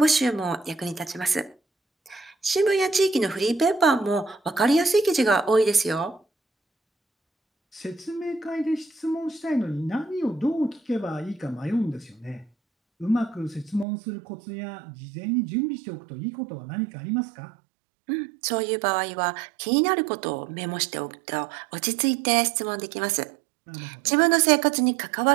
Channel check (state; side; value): drops out; left; at 13.9 s